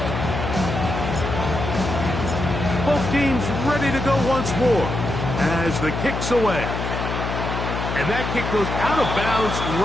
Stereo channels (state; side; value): noise; left; hum, 4 dB below the sound